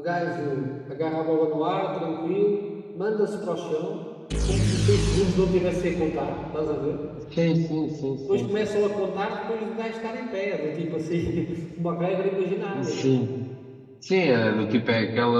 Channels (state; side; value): identical; both; correlation 1.00